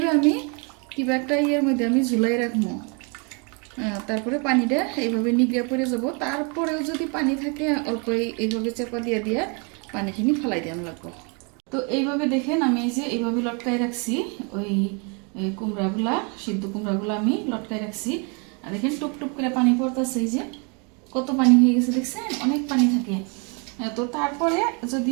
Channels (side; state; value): left; quieter; 34.4 dB